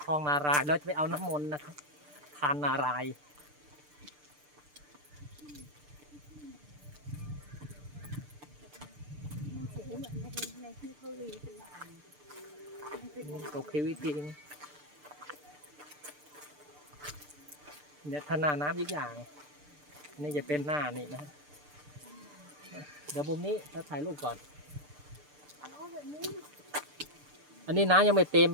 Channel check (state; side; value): late; left; 6.7 ms